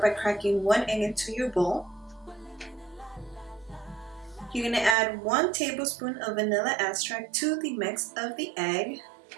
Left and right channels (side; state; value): left; drops out; at 5.0 s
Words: by cracking 1 egg into your bowl. You're going to add 1 tablespoon of vanilla extract to the mix of the egg.